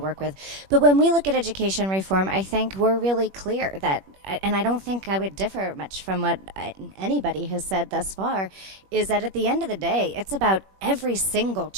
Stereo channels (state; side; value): late; left; 21 ms